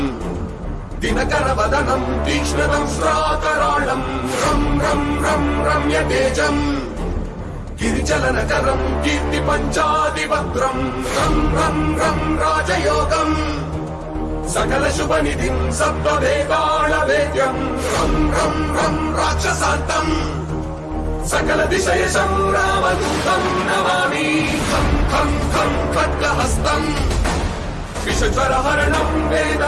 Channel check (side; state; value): both; identical; correlation 1.00